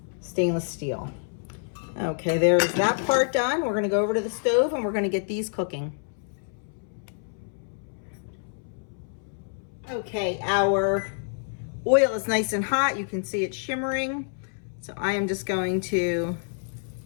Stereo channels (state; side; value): silent; right; 60 dB below the other